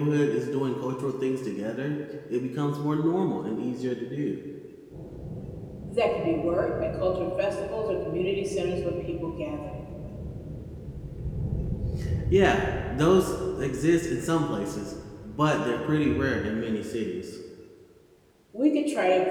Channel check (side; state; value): both; identical; correlation 1.00